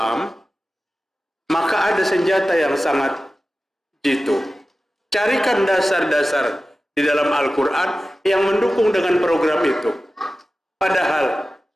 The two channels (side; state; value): both; normal; correlation 0.95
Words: Maka ada senjata yang sangat jitu. Carikan dasar-dasar di dalam Al-Quran yang mendukung dengan program itu. Padahal